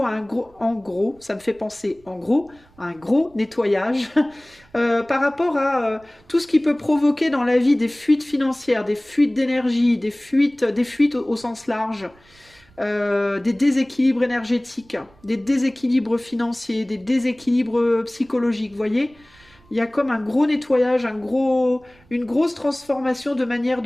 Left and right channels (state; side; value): noise; right; rumble, 29 dB below the sound